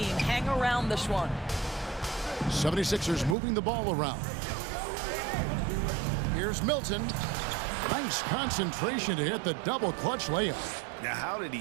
hang around this one. 76ers moving the ball around. Here's Milton. Nice concentration to hit the double clutch layup. Now, how did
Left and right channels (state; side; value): drops out; left; at 3.4 s